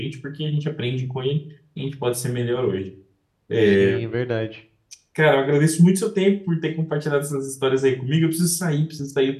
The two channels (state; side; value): identical; both; correlation 1.00